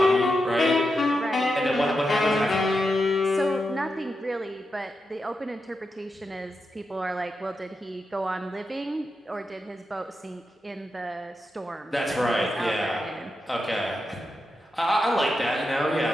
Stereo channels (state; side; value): normal; both; correlation 0.87